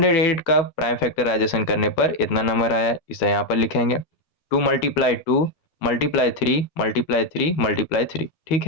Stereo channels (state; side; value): late; right; 12 ms